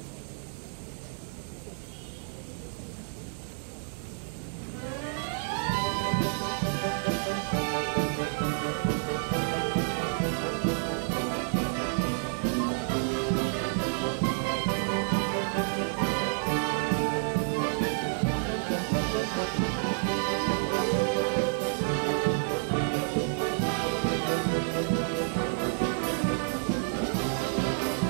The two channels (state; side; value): silent; left; digital silence